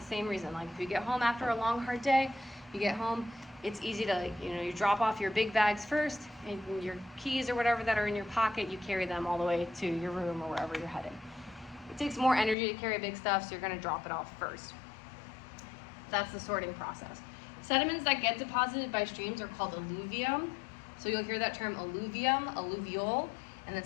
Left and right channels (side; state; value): right; drops out; at 12.6 s